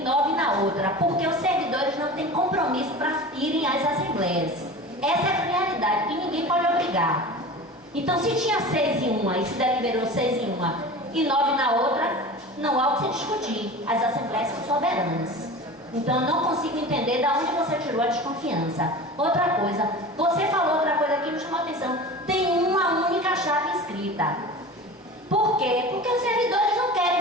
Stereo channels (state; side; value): normal; both; correlation 0.34